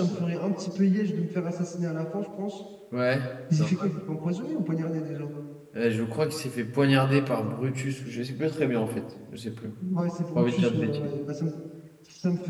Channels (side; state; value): both; identical; correlation 1.00